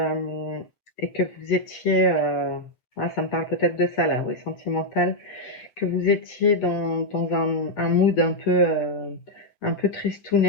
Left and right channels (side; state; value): right; late; 7.9 ms